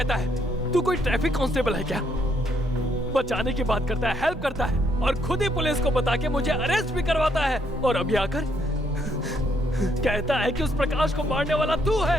है। तू कोई ट्रैफिक कांस्टेबल है क्या? बचाने की बात करता है, हेल्प करता है, और खुद ही पुलिस को बता के मुझे अरेस्ट भी करवाता है। और अभी आकर कहता है कि उस प्रकाश को मारने वाला तू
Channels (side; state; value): both; normal; correlation 0.73